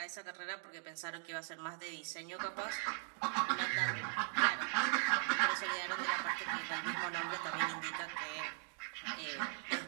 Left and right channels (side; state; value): left; silent; 51 dB below the other